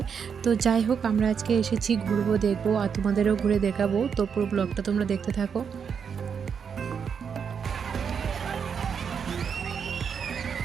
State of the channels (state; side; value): quieter; left; 6.8 dB